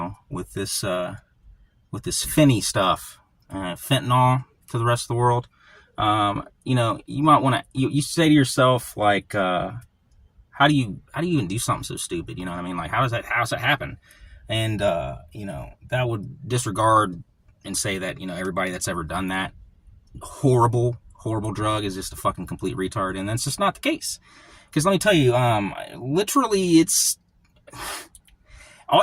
this Fenny stuff, fentanyl to the rest of the world. You might want to, you say to yourself, like, how do you even do something so stupid? You know what I mean? Like, how does that happen? And, that would disregard and say that, everybody that's ever done that horrible drug is just a fucking complete retard. And that's just not the case. Because let me tell you, literally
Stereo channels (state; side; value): identical; both; correlation 1.00